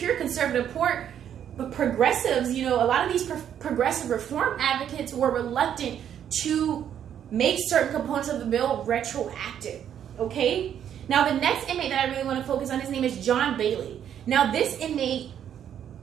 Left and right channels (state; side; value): quieter; left; 9.5 dB